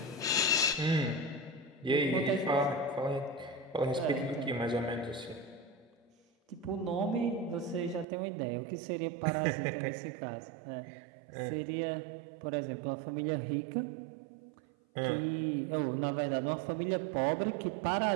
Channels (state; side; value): drops out; left; at 8.1 s